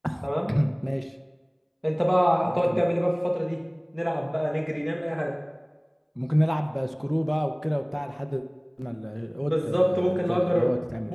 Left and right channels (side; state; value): both; identical; correlation 1.00